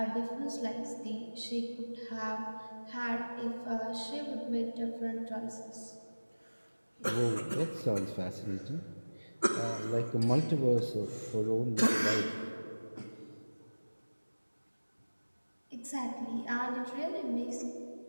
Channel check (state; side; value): inverted; both; correlation -1.00